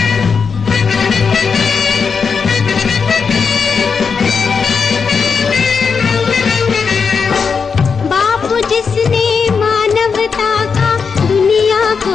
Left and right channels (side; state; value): right; quieter; 5.7 dB